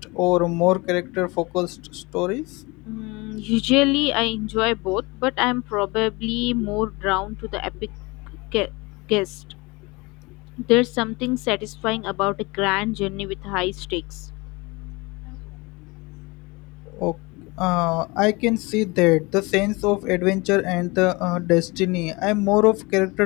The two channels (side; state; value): right; quieter; 25.2 dB